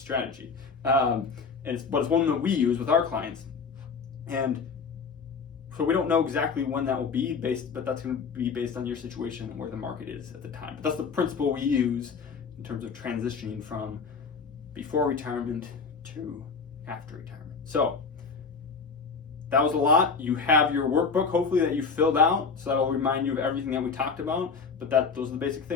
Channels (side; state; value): right; quieter; 5.2 dB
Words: but it's one that we use with our clients. And So we don't know exactly when that will be but that's going to be based on your situation and where the market is at the time. But that's the principle we use in terms of transitioning from before retirement to after retirement. So that was a lot. You have your workbook, hopefully, that you filled out, so that'll remind you of everything that we talked about. But those are the basic